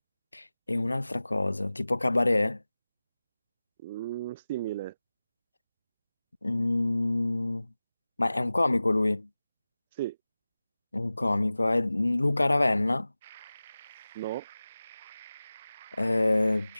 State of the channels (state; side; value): inverted; both; correlation -0.97